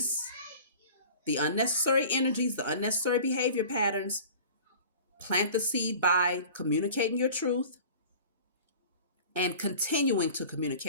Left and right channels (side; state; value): both; inverted; correlation -0.41